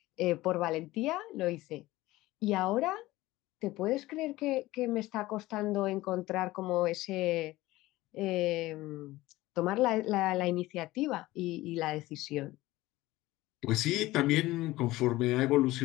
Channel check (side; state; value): right; quieter; 18.0 dB